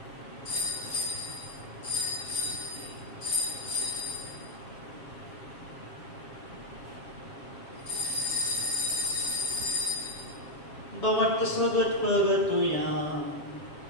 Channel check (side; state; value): right; late; 7.4 ms